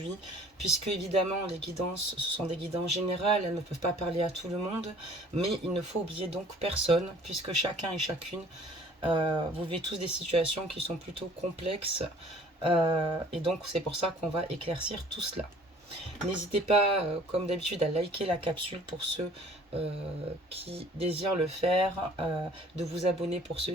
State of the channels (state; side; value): normal; both; correlation 0.52